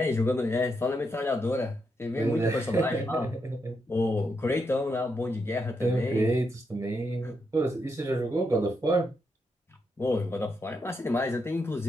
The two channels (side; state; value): both; normal; correlation 0.82